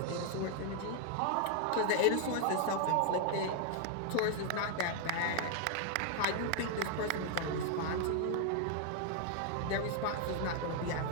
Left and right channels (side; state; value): both; different; correlation 0.00